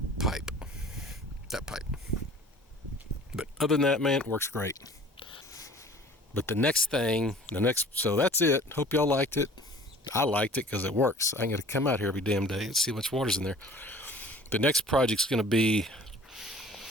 pipe. But other than that, man, it works great. But so that's it. Hope y'all liked it. I liked it because it works. I got to come out here every damn day and see how much water's in there. The next project's going to be,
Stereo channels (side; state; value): both; normal; correlation 0.48